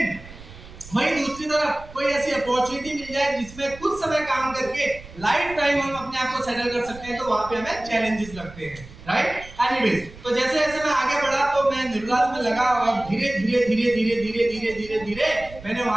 वहीं दूसरी तरफ कोई ऐसी अपॉर्चुनिटी मिल जाए जिसमें कुछ समय काम करके लाइफ टाइम हम अपने आप को सेटल कर सकते हैं, तो वहां पे हमें चैलेंजेस लगते हैं, राइट। एनीवेज, तो जैसे जैसे मैं आगे बढ़ा तो मैं निर्लाज में लगा और धीरे धीरे धीरे धीरे धीरे धीरे धीरे धीरे मैंने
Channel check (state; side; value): noise; right; rumble, 17 dB below the sound